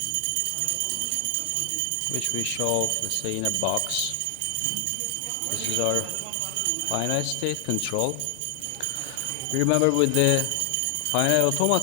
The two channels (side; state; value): both; different; correlation 0.00